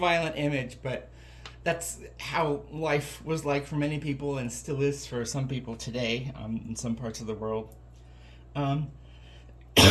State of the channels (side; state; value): both; identical; correlation 1.00